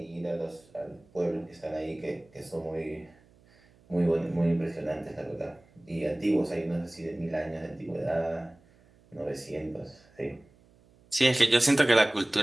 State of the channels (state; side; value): noise; right; hum, 29 dB below the sound